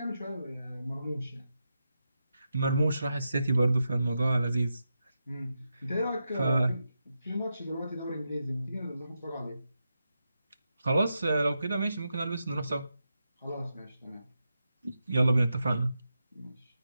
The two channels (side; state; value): both; inverted; correlation -0.87